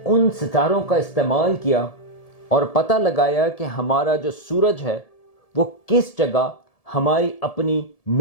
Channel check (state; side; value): late; right; 1.7 ms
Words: ان ستاروں کا استعمال کیا اور پتہ لگایا کہ ہمارا جو سورج ہے وہ کس جگہ ہماری اپنی